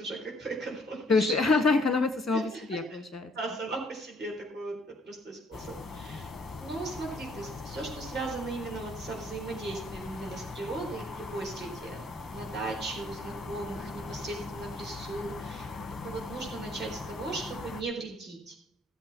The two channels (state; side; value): normal; both; correlation 0.64